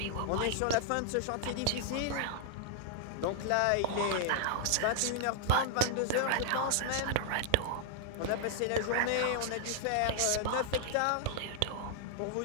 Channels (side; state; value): both; different; correlation -0.01